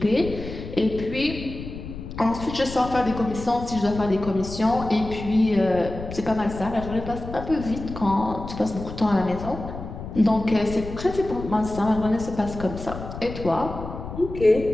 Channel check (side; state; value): left; noise; rumble, 10 dB below the sound